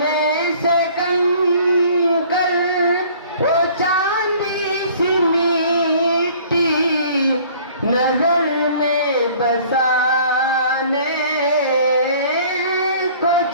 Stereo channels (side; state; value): both; inverted; correlation -0.52